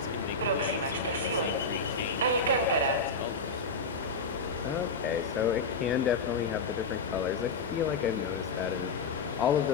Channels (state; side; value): quieter; right; 3.8 dB